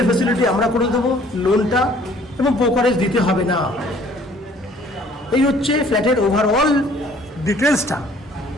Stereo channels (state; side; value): normal; both; correlation 0.57